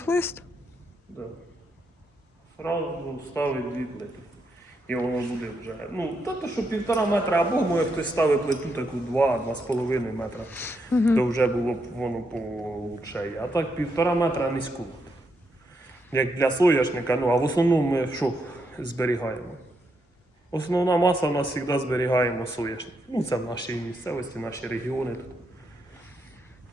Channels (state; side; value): normal; both; correlation 0.80